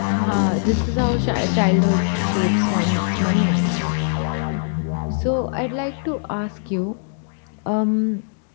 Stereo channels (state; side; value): silent; right; digital silence